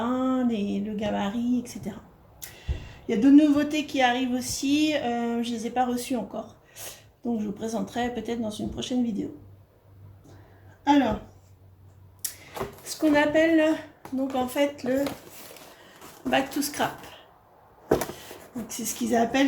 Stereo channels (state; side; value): identical; both; correlation 1.00